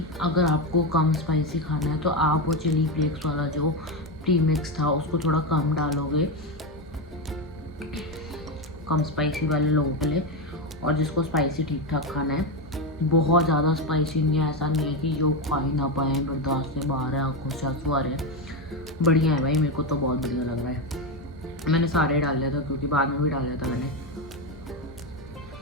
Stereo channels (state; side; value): normal; both; correlation 0.11